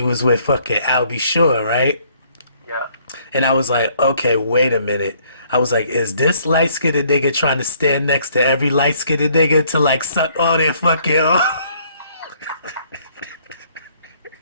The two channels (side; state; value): both; inverted; correlation -0.63